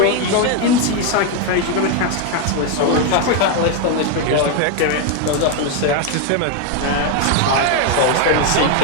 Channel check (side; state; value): both; different; correlation 0.01